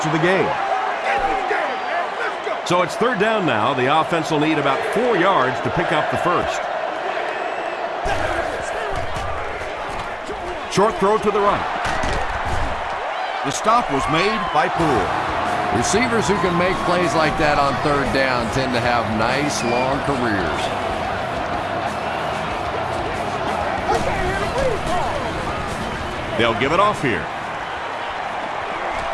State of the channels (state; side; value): identical; both; correlation 1.00